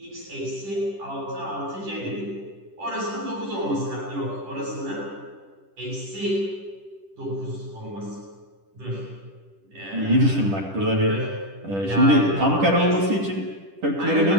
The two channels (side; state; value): left; late; 10 ms